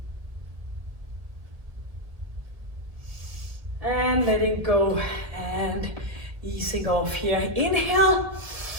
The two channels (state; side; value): late; left; 1.6 ms